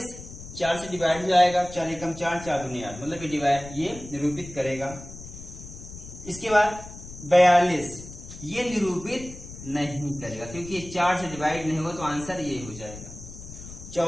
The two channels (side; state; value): left; noise; rumble, 14 dB below the sound